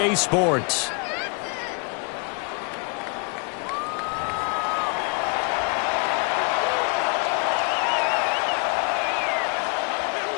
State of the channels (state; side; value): quieter; right; 34.9 dB